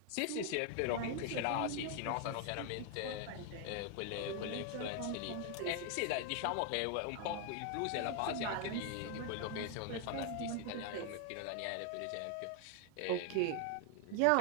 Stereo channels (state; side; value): different; both; correlation 0.01